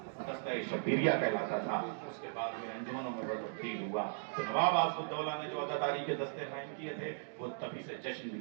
دستہ شبیریہ کہلاتا تھا، اس کے بعد میں انجمنوں میں تبدیل ہوا، تو نواب آصف الدولہ نے جو عزاداری کے دستے قائم کیے تھے وہ تبھی سے جشن بھی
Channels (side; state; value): left; silent; digital silence